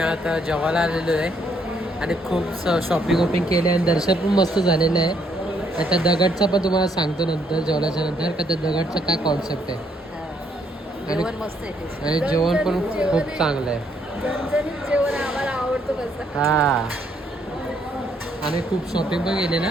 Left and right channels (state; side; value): normal; both; correlation 0.71